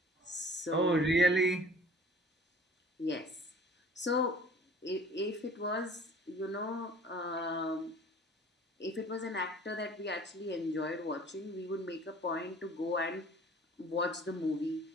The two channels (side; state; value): both; normal; correlation 0.48